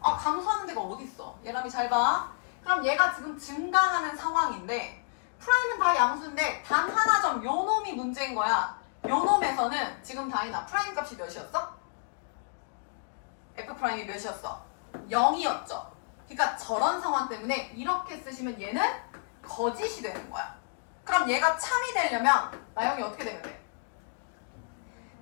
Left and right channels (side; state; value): right; silent; digital silence